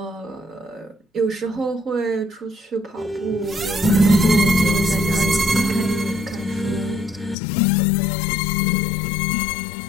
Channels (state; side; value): drops out; right; at 7.4 s